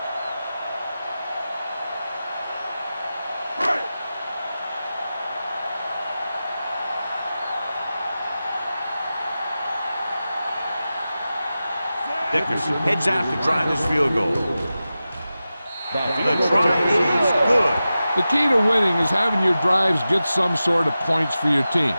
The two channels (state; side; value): inverted; both; correlation -0.93